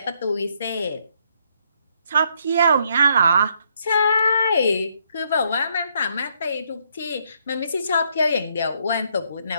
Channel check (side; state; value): both; inverted; correlation -0.72